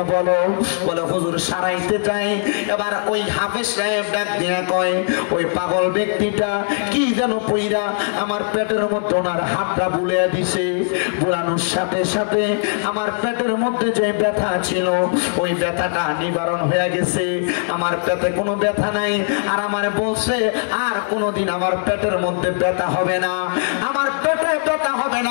বলো? বলে হুজুর সারাইতে চাই। এবার ওই হাফেজ সাহেব ডাক দিয়ে কয় ওই পাগল ব্যক্তিটা কি যেন পইরা আমার পেটের মধ্যে ওনার হাতটা বুলিয়ে দিছে। বুলানোর সাথে সাথে আমার পেটের মধ্যে যে ব্যথা ছিল ওই ব্যথাটা নিবারণ হয়ে গেছে। আমার পেটে কোনো ব্যথা নাই। আর আমারে বলছে আর কোনোদিন আমার পেটের মধ্যে ব্যথা হবে না। আমার পেটে ব্যথা ব্যথা হবে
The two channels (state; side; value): silent; right; digital silence